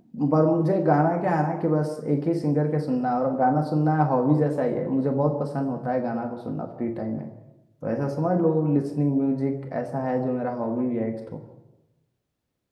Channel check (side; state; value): both; identical; correlation 1.00